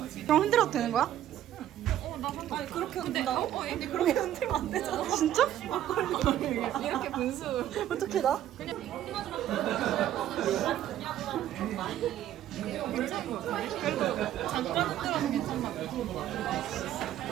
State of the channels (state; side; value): quieter; left; 12.0 dB